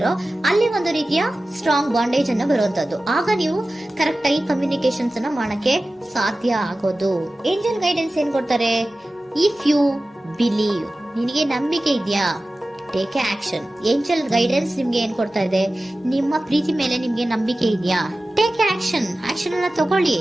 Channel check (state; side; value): normal; both; correlation 0.96